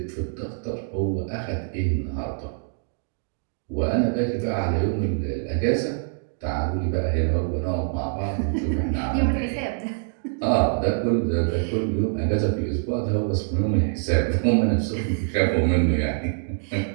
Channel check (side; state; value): left; silent; 62 dB below the other